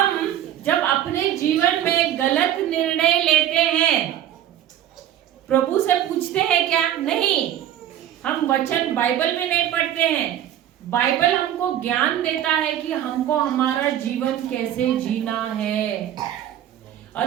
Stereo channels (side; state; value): left; quieter; 11.2 dB